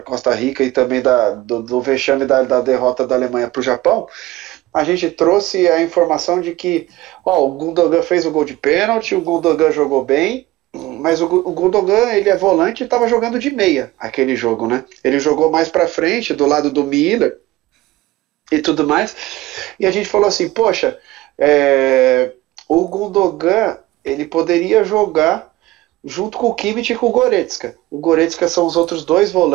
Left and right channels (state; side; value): quieter; left; 17.9 dB